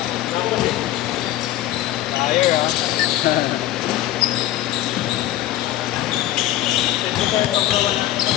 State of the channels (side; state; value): right; quieter; 14.1 dB